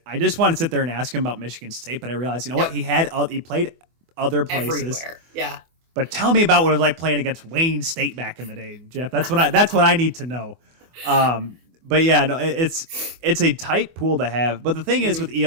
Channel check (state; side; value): late; left; 24 ms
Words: I just wanted to sit there and ask him about Michigan State, but I realized, what, he played other places. Everywhere. Yeah. But tell me about what it was like playing against Wayne State back in the day, Jeff. That's what I need to know. But yeah, no, it's a tight pool to have. But the thing is with